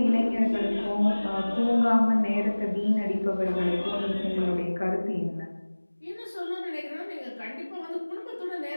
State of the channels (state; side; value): inverted; both; correlation -1.00